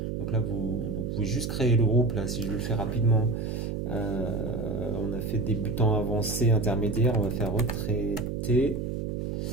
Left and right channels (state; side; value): noise; right; hum, 3 dB below the sound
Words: Donc là, vous pouvez juste créer le groupe. Là, si je le fais rapidement, on a fait débutant, avancé, intermédiaire. On va faire retraité.